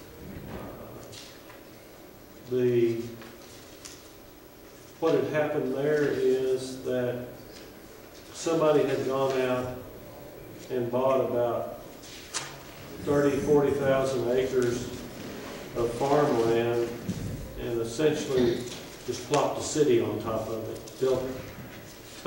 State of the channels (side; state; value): both; identical; correlation 1.00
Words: What had happened there is that somebody had gone out and bought about 40,000 acres of farmland and essentially just plopped a city on top of it, built